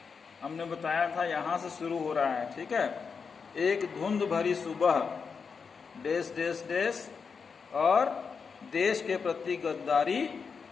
हमने बताया था, यहां से शुरू हो रहा है। ठीक है। एक धुंध भरी सुबह, देश देश देश, और देश के प्रति गद्दारी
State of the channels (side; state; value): right; quieter; 5.6 dB